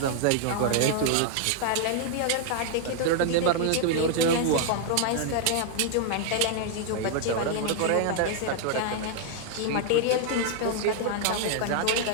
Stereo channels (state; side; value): different; both; correlation 0.00